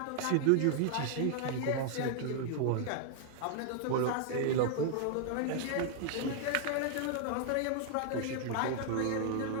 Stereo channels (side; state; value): both; different; correlation 0.00